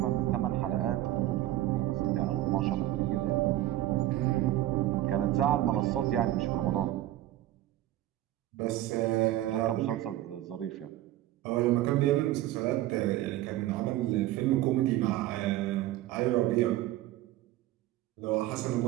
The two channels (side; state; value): left; quieter; 14.8 dB